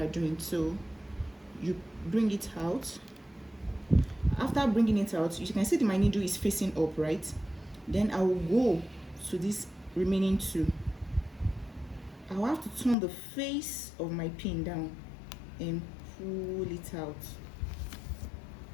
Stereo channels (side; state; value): right; drops out; at 13.0 s